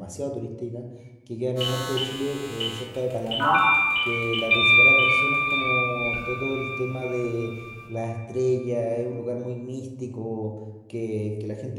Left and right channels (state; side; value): identical; both; correlation 1.00